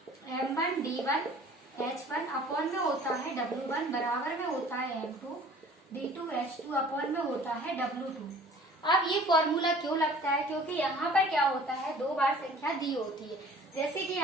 M1 D1 H1 अपॉन में होता है W1 बराबर में होता है M2 D2 H2 अपॉन में होता है W2। अब ये फॉर्मूला क्यों लगता है, क्योंकि यहाँ पर क्या होता है, 2 बार संख्या दी होती है। जैसे कि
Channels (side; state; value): both; normal; correlation 0.49